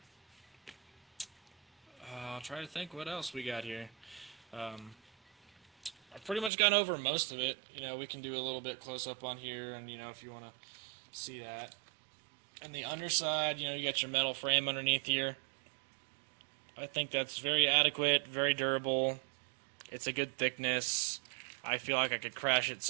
try to think what else we got here. I've pretty much gone over most of it. We can do a little bit close up on here, and if you want to see that. And the underside, you got your metal frame underneath here. I think that's very adequate, very durable. It's a good thickness. I feel like I could crash it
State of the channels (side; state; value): left; drops out; at 6.5 s